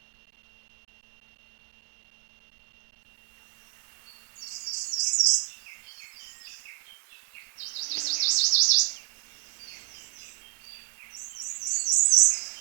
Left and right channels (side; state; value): left; silent; digital silence